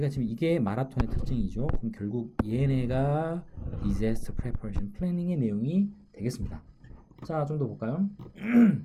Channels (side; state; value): both; identical; correlation 1.00